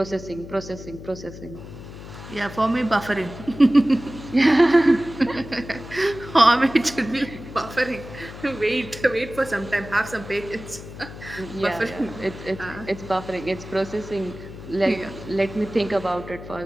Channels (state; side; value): noise; left; hum, 14 dB below the sound